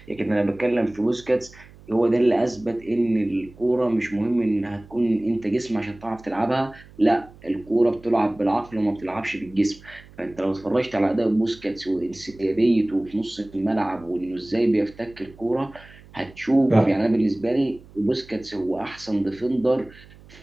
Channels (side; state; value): right; noise; hum, 23 dB below the sound